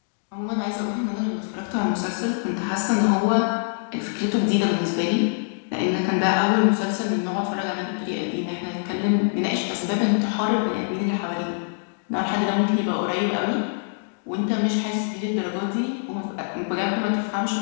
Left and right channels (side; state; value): right; silent; digital silence